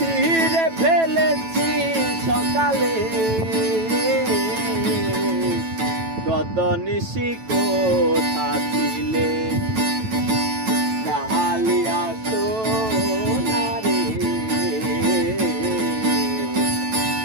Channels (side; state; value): left; late; 9.1 ms